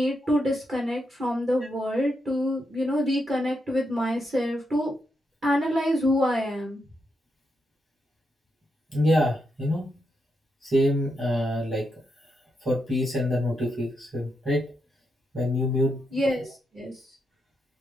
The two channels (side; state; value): both; normal; correlation 0.83